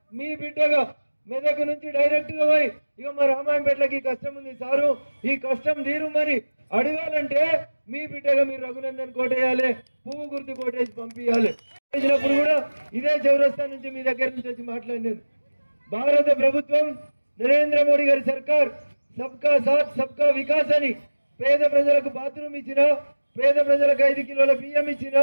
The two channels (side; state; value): both; inverted; correlation -1.00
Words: మీ బిడ్డగా మెదక్ నుంచి డైరెక్ట్ గా పోయి ఇక మా రామాయంపేటలకి కష్టం ఉంది సారు, ఈ కష్టం తీరు మరి అడగాలంటే మీ బిడ్డగా మీరు రఘునందన్ కోటేయాలి, పువ్వు గుర్తు కోటేసి పంపించాలి. చేసినప్పుడు కూడా ఇదే చౌరస్తా నుంచి మీ దగ్గర నుంచి వచ్చి మాట్లాడినాను. భారత ప్రభుత్వం నరేంద్ర మోడీ గారి సర్కార్ సబ్కా సాత్ సబ్కా వికాస్ అని పేద ప్రజలకు బాత్రూమ్ ఇచ్చిన, పేద ప్రజలకు 5 కిలోల బియ్యం ఇచ్చిన,